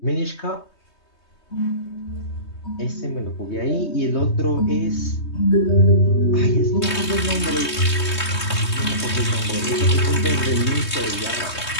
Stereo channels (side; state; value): right; late; 3.2 ms